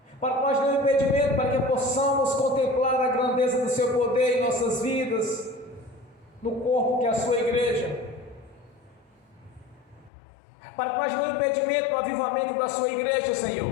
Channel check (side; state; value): right; drops out; at 10.1 s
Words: Para que nós não impedimento, para que possamos contemplar a grandeza do seu poder em nossas vidas, no corpo que é a sua igreja. Para que nós não impedimento no avivamento da sua igreja,